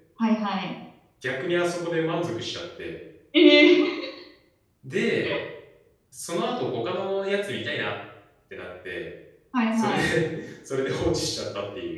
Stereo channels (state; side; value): identical; both; correlation 1.00